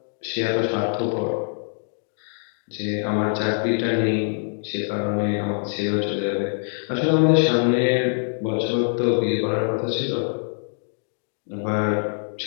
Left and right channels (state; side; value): silent; right; 63 dB below the other